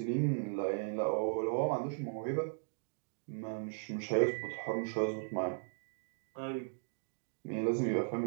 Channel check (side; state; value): left; silent; digital silence